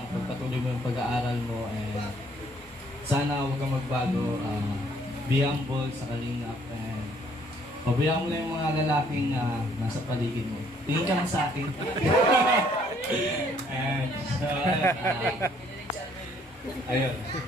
pagpatuloy mo yung pag-aaral mo, and sana huwag kang magbago. Be humble sa kalingap, and pabayaan mo na yung mga lalaking nasa paligid mo. Tingin ka lang sa akin. And so, ayun.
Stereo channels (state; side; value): normal; both; correlation 0.64